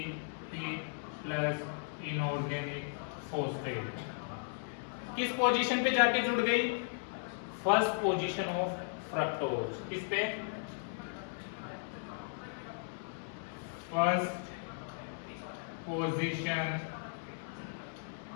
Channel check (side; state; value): right; silent; digital silence